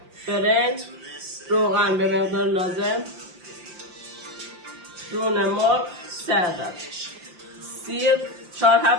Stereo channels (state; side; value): late; left; 5.7 ms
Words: برنج، روغن به مقدار لازم، رون مرغ 3 عدد، سیر 4